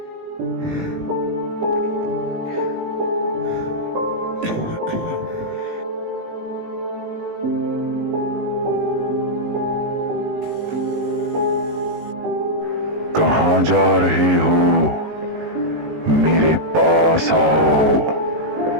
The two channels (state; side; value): late; left; 18 ms